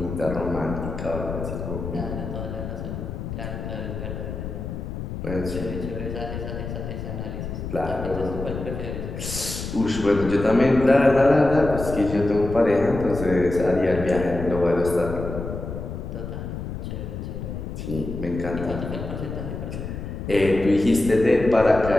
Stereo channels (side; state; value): left; noise; rumble, 7 dB below the sound